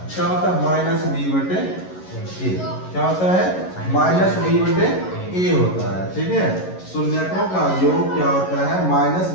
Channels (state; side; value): late; right; 11 ms